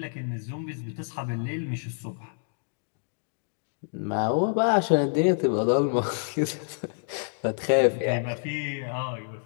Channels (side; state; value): right; silent; digital silence